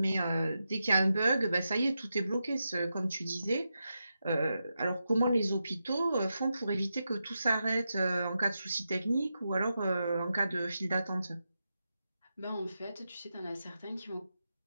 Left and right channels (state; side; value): inverted; both; correlation -0.88